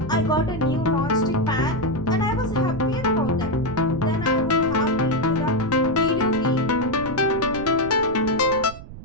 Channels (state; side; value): noise; right; rumble, 14 dB below the sound